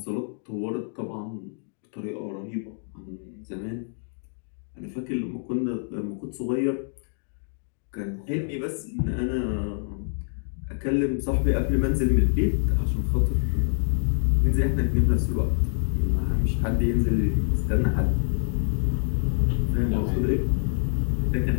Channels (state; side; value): silent; right; digital silence